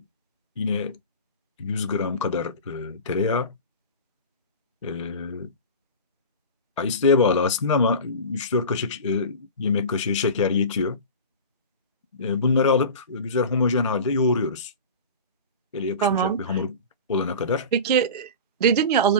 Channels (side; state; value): both; inverted; correlation -0.32